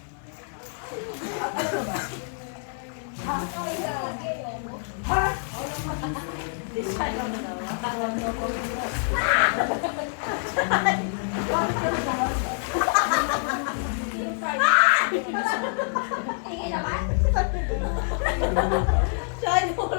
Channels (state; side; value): silent; right; 61 dB below the other